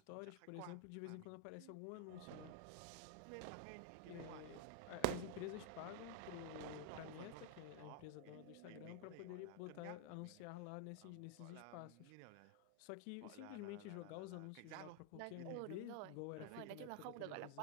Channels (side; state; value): both; different; correlation 0.00